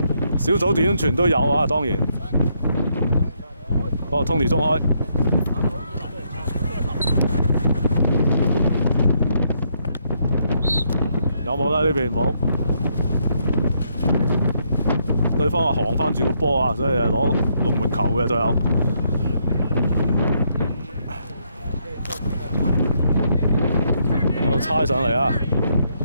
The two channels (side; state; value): both; inverted; correlation -0.74